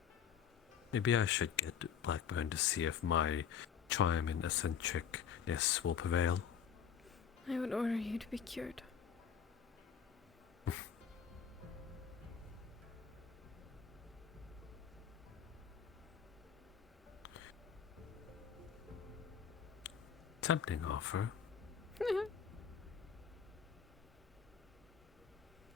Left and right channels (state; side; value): quieter; right; 7.7 dB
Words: Maybe I should get Blackburn to see if my charm and eccentricness will prevail. I would order you to be cured. Tempting offer.